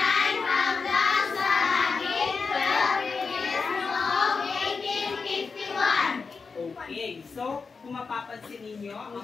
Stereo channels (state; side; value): quieter; right; 4.9 dB